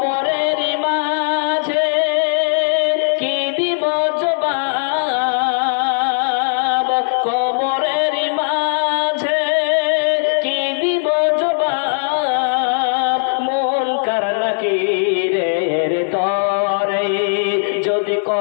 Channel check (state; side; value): silent; right; digital silence